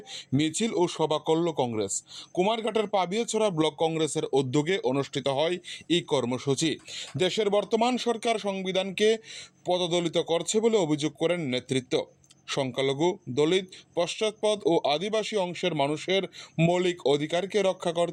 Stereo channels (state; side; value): identical; both; correlation 1.00